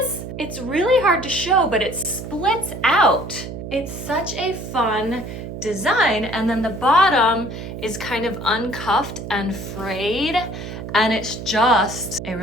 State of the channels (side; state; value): right; noise; hum, 9 dB below the sound